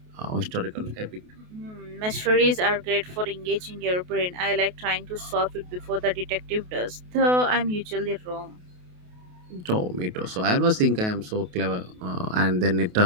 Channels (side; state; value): left; late; 28 ms